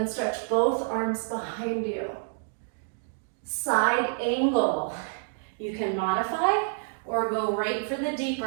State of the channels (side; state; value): left; silent; digital silence